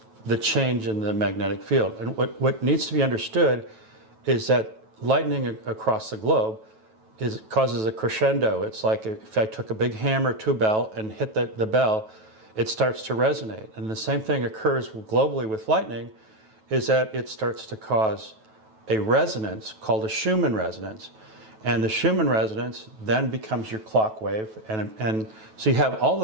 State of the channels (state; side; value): late; left; 9.2 ms